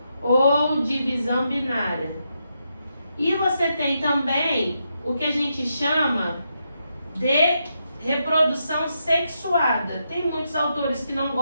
ou divisão binária. E você tem também o que a gente chama de reprodução sexuada. Tem muitos autores que não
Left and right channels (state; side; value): inverted; both; correlation -0.82